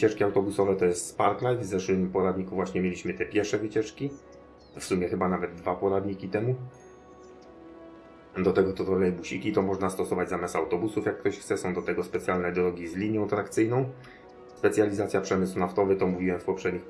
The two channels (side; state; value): both; identical; correlation 1.00